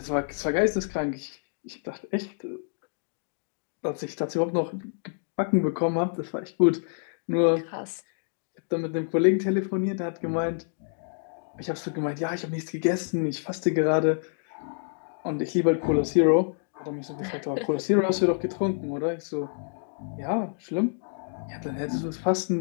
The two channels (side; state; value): right; silent; digital silence